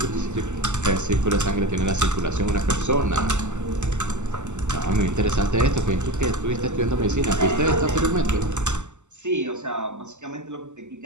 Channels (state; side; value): late; left; 0.84 ms